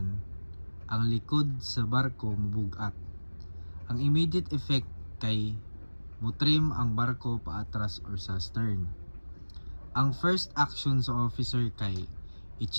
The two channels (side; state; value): both; inverted; correlation -1.00